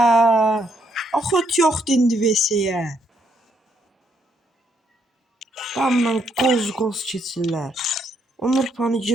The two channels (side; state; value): both; normal; correlation 0.73